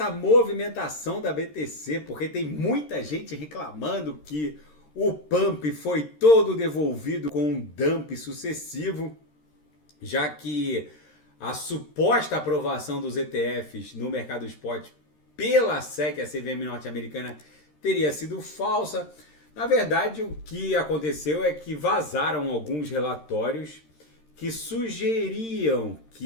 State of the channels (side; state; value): right; late; 13 ms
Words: movimentação da BTC, porque tem muita gente reclamando que o pump foi todo devolvido com um dump sucessivo, já que a suposta aprovação dos ETFs no mercado spot pela SEC, a CVM norte-americana, teria sido falsa. Na verdade, o que aconteceu é que vazaram alguns relatórios que sugeriam